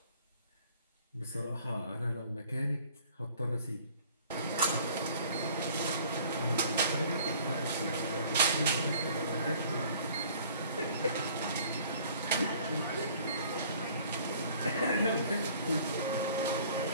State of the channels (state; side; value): inverted; both; correlation -0.53